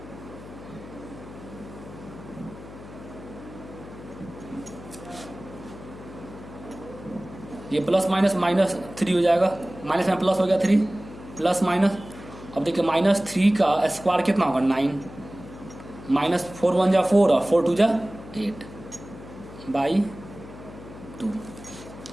ये प्लस माइनस -3 हो जाएगा, माइनस में प्लस हो गया 3 प्लस माइनस। अब देखिए -3 का स्क्वायर कितना होगा 9, -4 1 जा 4 और 4 2 जा 8 बाई 2,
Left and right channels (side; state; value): left; noise; hum, 16 dB below the sound